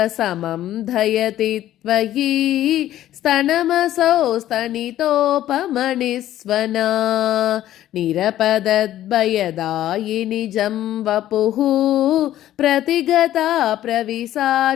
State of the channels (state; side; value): quieter; right; 13.0 dB